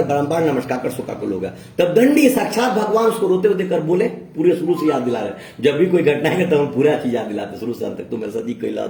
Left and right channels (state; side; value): identical; both; correlation 1.00